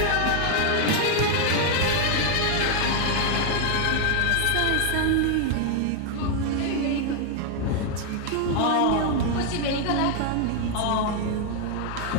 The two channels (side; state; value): both; different; correlation 0.00